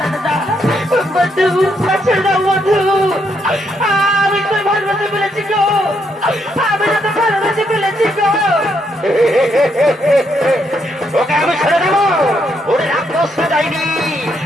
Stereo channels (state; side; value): normal; both; correlation 0.76